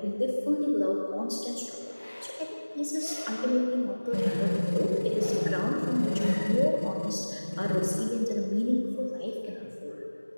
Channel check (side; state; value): both; inverted; correlation -1.00